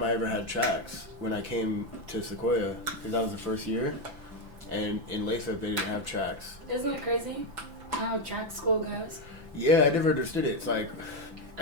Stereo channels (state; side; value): late; left; 5.9 ms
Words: I ever had tracks when I came to Sequoia. Because that was the first year. And in Lathrop, they didn't have tracks. Isn't it crazy how track school goes? Yeah, I never understood it. It's like,